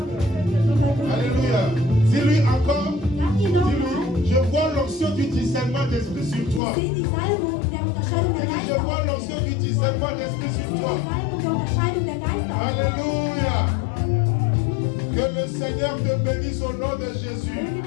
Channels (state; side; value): drops out; right; at 6.6 s